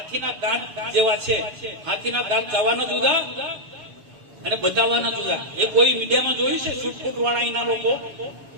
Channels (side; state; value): left; late; 7.0 ms